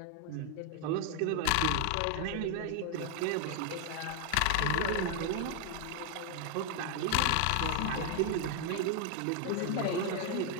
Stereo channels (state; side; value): different; both; correlation 0.01